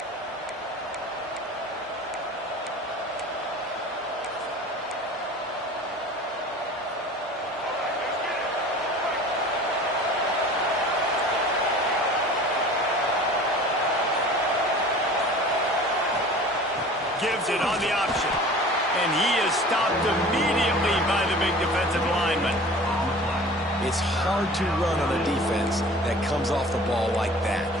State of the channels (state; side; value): normal; both; correlation 0.43